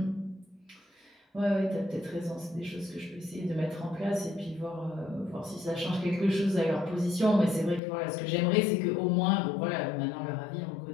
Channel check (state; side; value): drops out; right; at 7.8 s